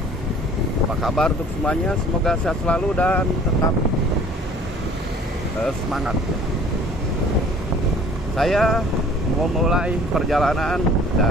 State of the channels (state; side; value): normal; both; correlation 0.51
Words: Apa kabar untuk semuanya? Semoga sehat selalu dan tetap semangat ya. Saya mau mulai perjalanan